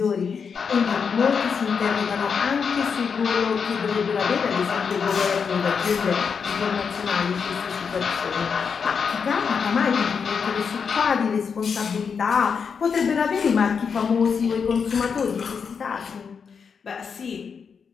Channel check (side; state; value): right; quieter; 6.1 dB